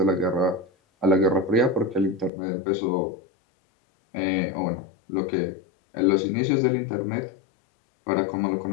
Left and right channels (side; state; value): right; drops out; at 2.3 s